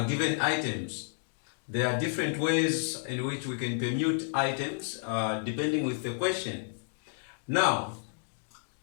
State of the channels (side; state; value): right; silent; digital silence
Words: given items. There are different ways in which we can permute items depending with the question. Now,